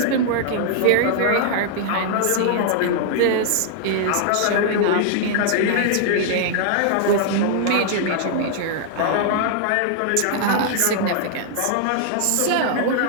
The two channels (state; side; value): different; both; correlation -0.01